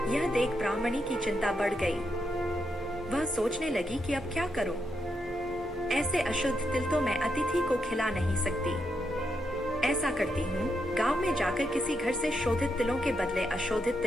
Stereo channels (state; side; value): normal; both; correlation 0.82